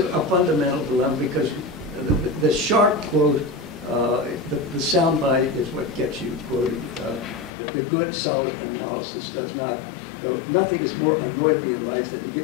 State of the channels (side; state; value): right; drops out; at 7.5 s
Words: fundamental dilemma, because the sharp quote, the soundbite is what gets you quoted. The good, solid analysis does not. Nothing has more annoyed me in life than to